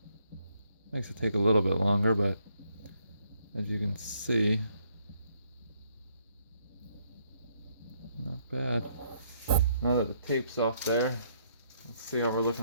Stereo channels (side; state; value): both; inverted; correlation -0.71